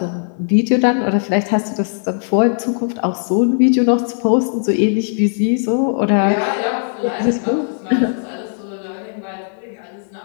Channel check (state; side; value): silent; right; digital silence